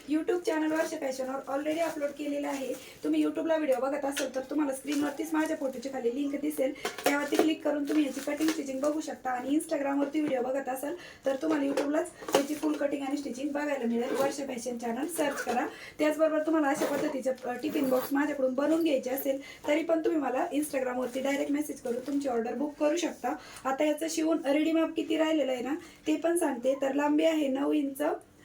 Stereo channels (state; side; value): identical; both; correlation 1.00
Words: यूट्यूब चॅनल वर्षा फॅशनवर ऑलरेडी अपलोड केलेला आहे. तुम्ही यूट्यूबला व्हिडिओ बघत असाल तर तुम्हाला स्क्रीनवरतीच माझ्या फोटोची खाली लिंक दिसेल, त्यावरती क्लिक करून तुम्ही याची कटिंग स्टिचिंग बघू शकता. आणि इंस्टाग्रामवरती व्हिडिओ बघत असाल तर तुम्हाला यूट्यूबलाच याची फुल कटिंग आणि स्टिचिंग बघायला मिळेल. वर्षा फॅशन चॅनल सर्च करा. त्याचबरोबर तुम्हाला अशा पद्धतीचे टिफिन बॉक्स माझ्याकडून बनवून घ्यायचे असेल तरी पण तुम्ही मला इंस्टाग्रामवरती डायरेक्ट मेसेज करून तुमची ऑर्डर बुक करू शकता. आता याचं शिवून रेडी माप किती राहिलेलं आहे ना ते पण सांगते. तर लांबी आहे 9 इंच,